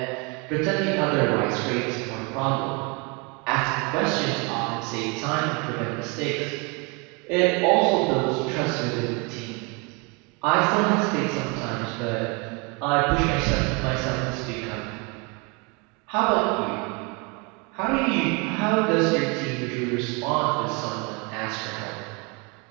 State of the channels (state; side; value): quieter; left; 30.6 dB